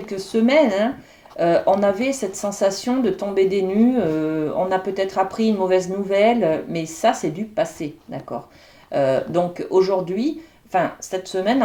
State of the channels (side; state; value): both; identical; correlation 1.00